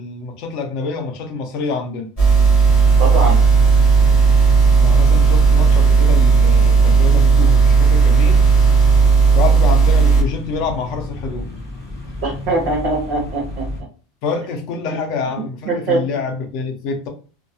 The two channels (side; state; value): left; quieter; 4.0 dB